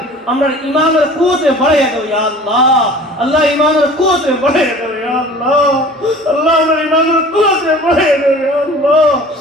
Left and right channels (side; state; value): both; normal; correlation 0.45